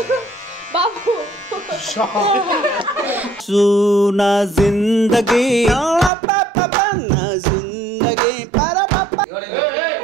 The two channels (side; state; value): left; drops out; at 6.1 s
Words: నా జిందగీ జిందగీ